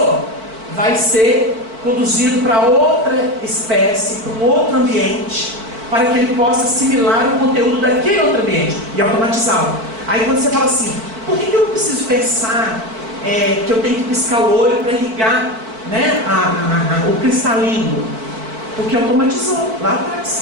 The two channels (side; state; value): left; late; 4.5 ms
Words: Vai ser conduzido para outra espécie, para um outro ambiente, para que ele possa assimilar o conteúdo daquele outro ambiente e automatizá-lo. Aí quando você fala assim, por que eu não preciso pensar que eu tenho que piscar o olho para ligar, né, o cristalino? Porque automatizou lá